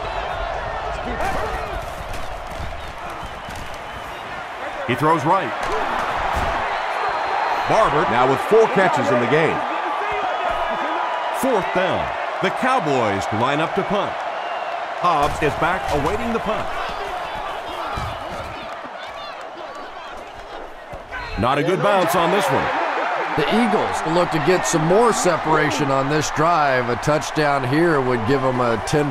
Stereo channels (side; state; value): both; identical; correlation 1.00